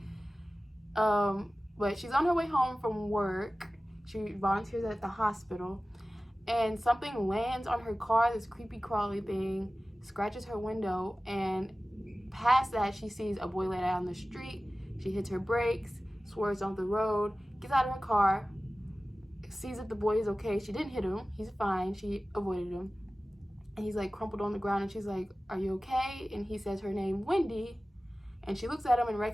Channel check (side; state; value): both; normal; correlation 0.96